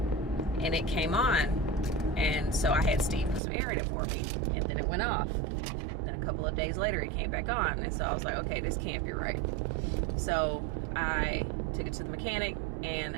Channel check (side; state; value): left; drops out; at 3.4 s